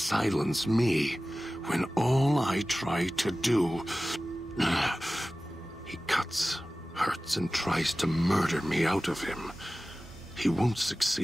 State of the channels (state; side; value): normal; both; correlation 0.96